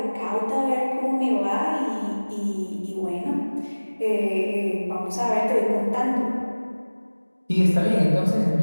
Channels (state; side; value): inverted; both; correlation -1.00